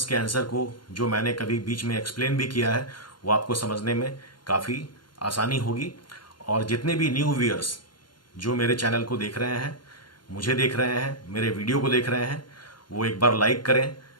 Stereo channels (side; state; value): right; late; 0.71 ms